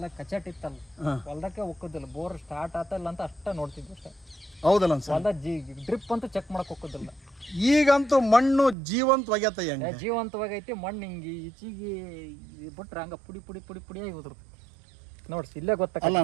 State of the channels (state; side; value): drops out; left; at 8.8 s